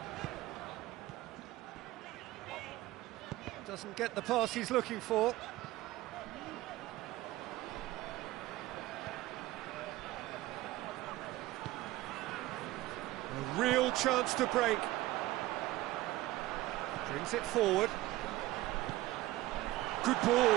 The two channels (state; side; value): quieter; left; 17.3 dB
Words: Doesn't get the pass he's looking for. A real chance to break. Brings it forward. Good